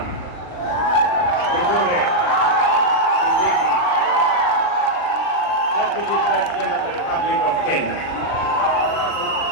Kindiki, Deputy President of the Republic of Kenya.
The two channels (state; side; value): late; right; 39 ms